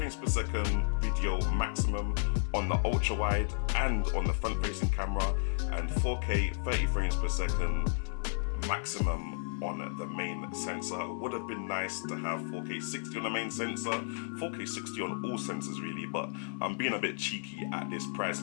per second video maximum on the ultra wide and on the front facing camera, and 4K 30 frames per second maximum on the main sensor. It would have been nice to have 4K 60 on the main sensor, 4K 60 on all sensors really, but I'm being a bit cheeky at this price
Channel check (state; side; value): silent; right; digital silence